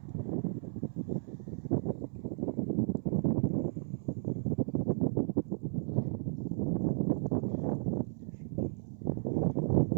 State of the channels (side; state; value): left; silent; 55 dB below the other